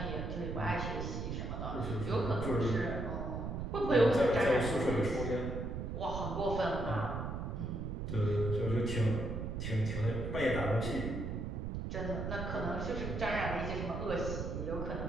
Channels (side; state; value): right; noise; rumble, 4 dB below the sound